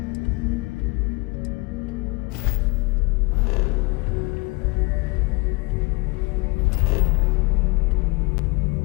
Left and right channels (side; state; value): right; quieter; 27.6 dB